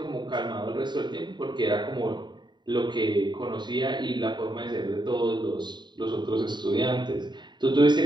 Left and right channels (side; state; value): left; late; 0.22 ms